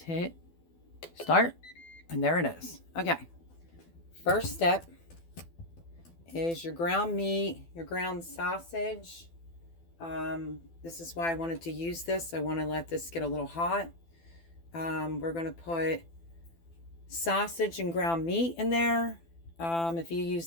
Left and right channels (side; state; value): right; late; 12 ms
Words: hit start, and there it is. Okay, first step is your ground meat, your ground sausage. This is why I wanted to use this. I want to let this get a little hot. We're going to put sausage and ground meat in there. If you